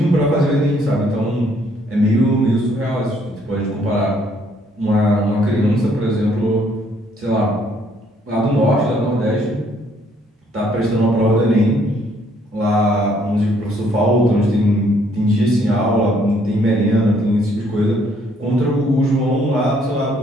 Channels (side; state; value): both; normal; correlation 0.66